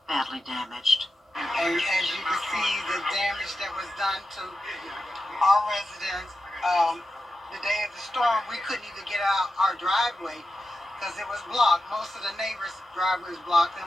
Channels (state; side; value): normal; both; correlation 0.91